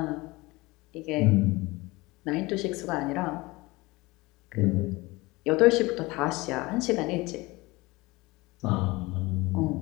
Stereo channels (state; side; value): quieter; right; 22.2 dB